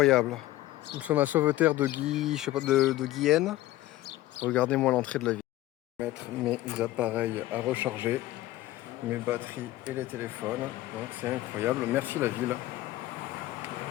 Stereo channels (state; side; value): quieter; right; 16.0 dB